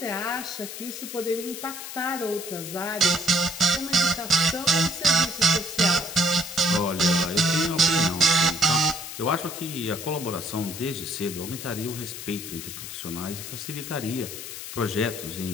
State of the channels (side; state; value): left; noise; hiss, 9 dB below the sound